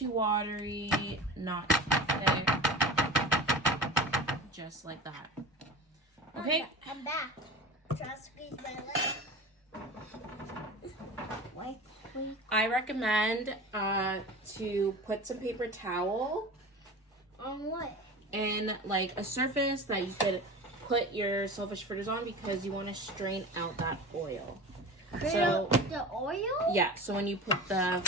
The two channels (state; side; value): normal; both; correlation 0.34